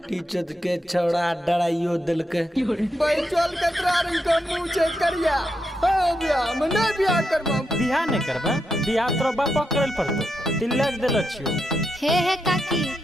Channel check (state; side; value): normal; both; correlation 0.84